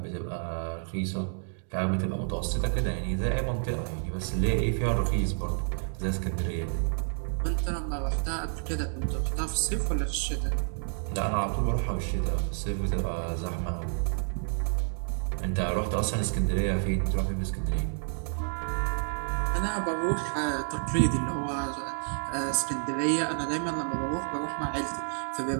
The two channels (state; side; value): silent; left; 58 dB below the other